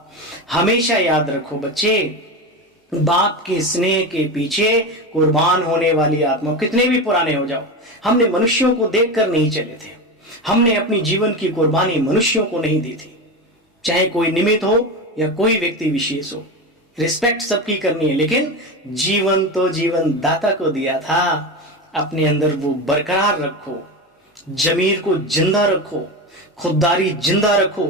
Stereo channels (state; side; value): normal; both; correlation 0.21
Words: हमेशा याद रखो बच्चे, बाप के स्नेह के पीछे कुर्बान होने वाली आत्मा, कितने भी पुराने हो जाओ, हमने मनुष्यों को देखकर नहीं चले थे। हमने अपनी जीवन की कुर्बानी मनुष्यों को नहीं दी थी, चाहे कोई निमित्त हो या कोई व्यक्ति विशेष हो। रिस्पेक्ट सबकी करनी है, लेकिन जीवन तो जीवन दाता को दिया था। अपने अंदर वो बरकरार रखो, जमीर को जिंदा रखो, खुददारी जिंदा रखो,